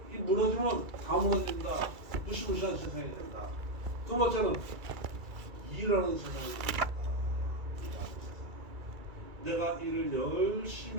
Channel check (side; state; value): left; late; 2.3 ms